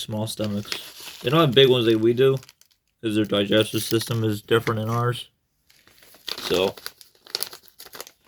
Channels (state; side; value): identical; both; correlation 1.00